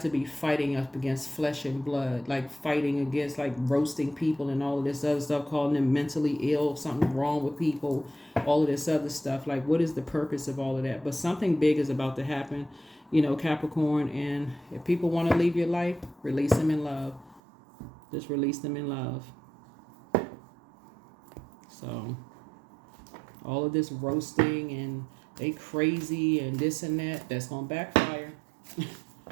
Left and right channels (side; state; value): left; drops out; at 17.4 s